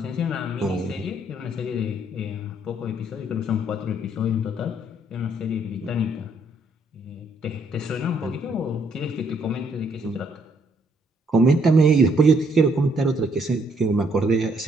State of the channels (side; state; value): both; normal; correlation 0.69